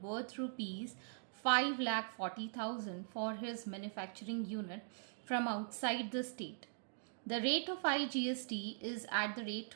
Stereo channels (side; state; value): left; silent; digital silence